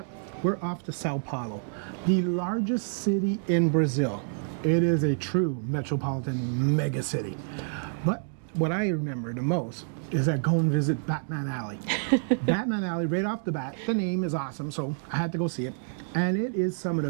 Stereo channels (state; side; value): silent; left; digital silence